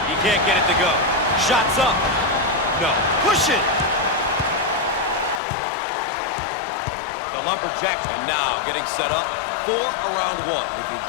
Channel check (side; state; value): right; drops out; at 5.4 s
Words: He can't get it to go. Shots up. No. Push it. The Lumberjacks, and now getting set up for a round one. If you